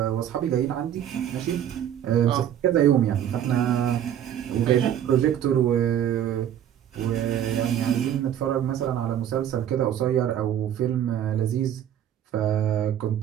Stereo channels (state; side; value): quieter; left; 10.3 dB